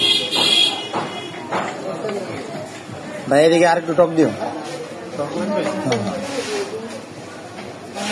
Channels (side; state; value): both; identical; correlation 1.00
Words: ভাই এদিকে আর একটু টক দিও।